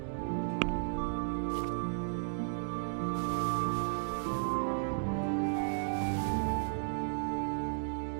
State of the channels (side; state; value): left; silent; digital silence